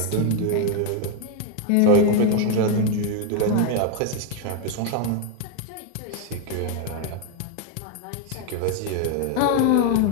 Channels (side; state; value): both; different; correlation 0.00